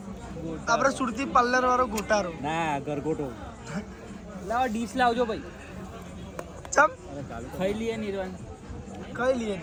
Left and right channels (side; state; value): both; identical; correlation 1.00